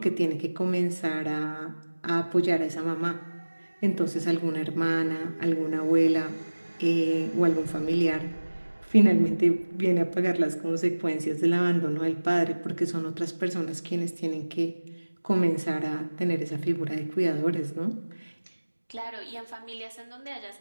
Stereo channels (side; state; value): both; inverted; correlation -1.00